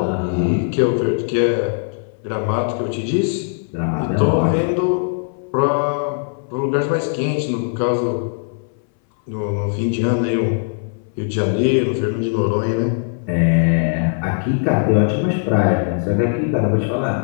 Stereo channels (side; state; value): right; silent; 61 dB below the other